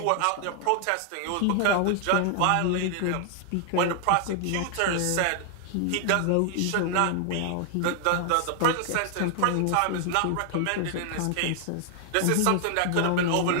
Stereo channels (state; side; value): different; both; correlation 0.00